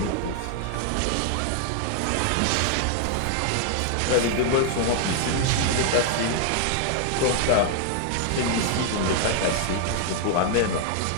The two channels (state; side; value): different; both; correlation 0.00